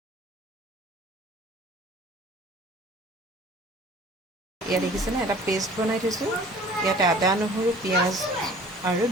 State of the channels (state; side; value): normal; both; correlation 0.48